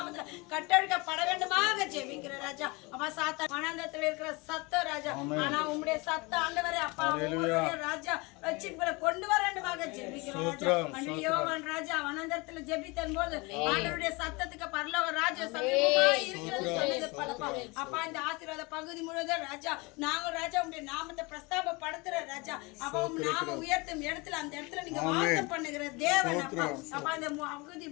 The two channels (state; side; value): quieter; right; 26.3 dB